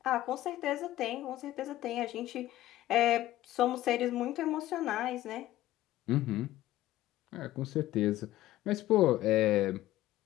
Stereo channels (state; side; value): quieter; right; 15.2 dB